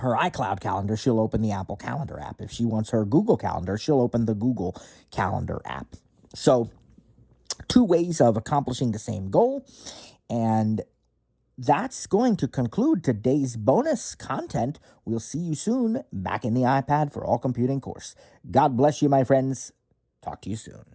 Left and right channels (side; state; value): both; identical; correlation 1.00